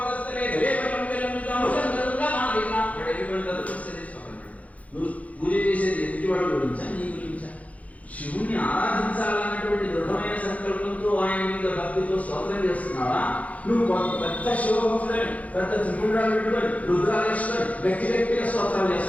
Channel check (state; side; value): late; right; 0.069 ms